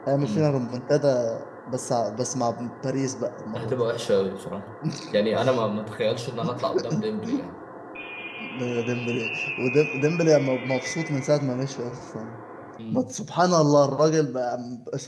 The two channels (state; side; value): identical; both; correlation 1.00